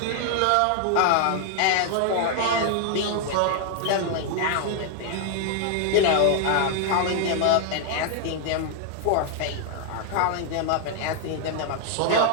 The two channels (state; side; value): different; both; correlation 0.00